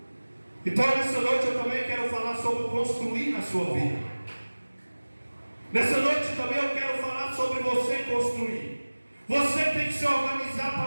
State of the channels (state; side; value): inverted; both; correlation -1.00